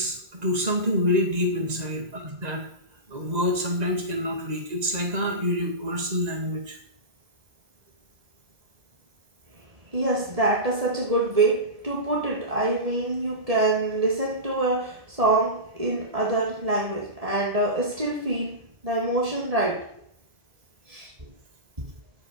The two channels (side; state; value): left; late; 1.9 ms